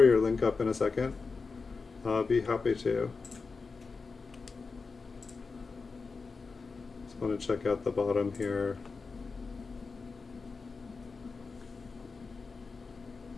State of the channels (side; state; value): right; quieter; 4.5 dB